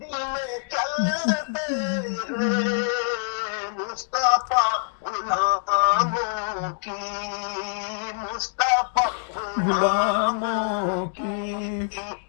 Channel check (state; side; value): silent; right; digital silence